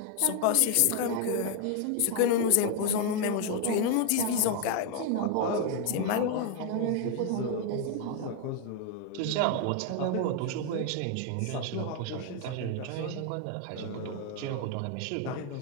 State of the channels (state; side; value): different; both; correlation 0.01